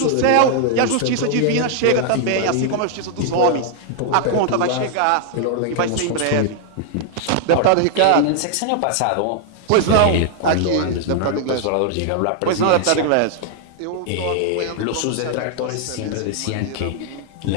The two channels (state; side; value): different; both; correlation 0.00